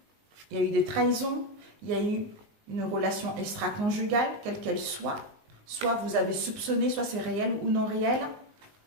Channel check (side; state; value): left; late; 19 ms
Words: il y a eu des trahisons, il y a eu une relation extra-conjugale, quelle qu'elle soit. Soit vous avez soupçonné, soit c'est réel ou non réel.